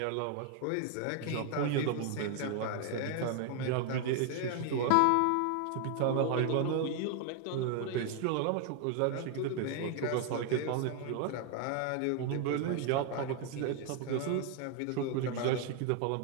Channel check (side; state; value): both; different; correlation 0.00